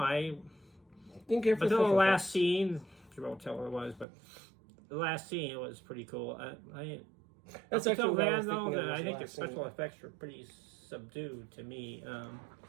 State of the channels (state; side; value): drops out; left; at 4.0 s